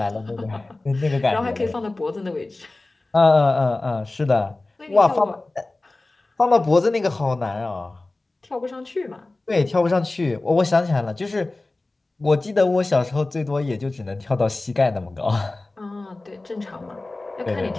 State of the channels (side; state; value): right; quieter; 3.0 dB